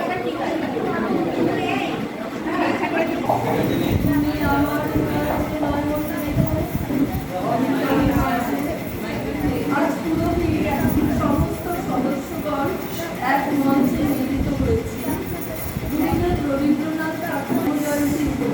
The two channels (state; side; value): identical; both; correlation 1.00